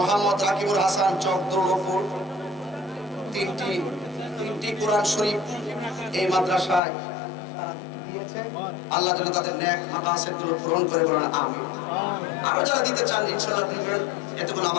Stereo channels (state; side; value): drops out; right; at 6.8 s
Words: রাকিবুল হাসান চকদৌলপুর, তিনটি কোরআন শরীফ এই মাদ্রাসায় আল্লাহ যেন তাদের নেক মাকাসিদগুলো পূরণ করে, বলেন আমিন। আরো যারা দিতে চান ইনশাআল্লাহ দিবেন, এতে কোনো